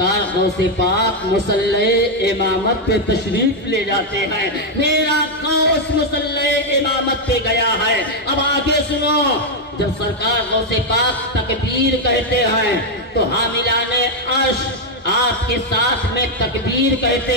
غوث پاک مصلی امامت پہ تشریف لے جاتے ہیں. میرا غوث مصلی امامت پہ گیا ہے. اب آگے سنو, جب سرکار غوث پاک تکبیر کہتے ہیں تو حاملان عرش آپ کے ساتھ میں تکبیر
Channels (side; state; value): both; normal; correlation 0.02